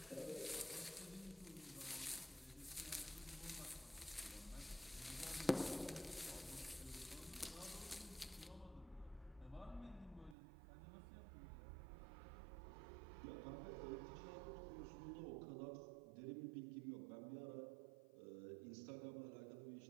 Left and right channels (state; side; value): drops out; left; at 10.4 s